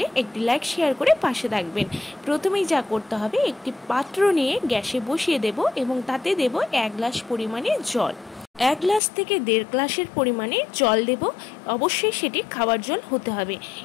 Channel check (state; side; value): drops out; right; at 9.0 s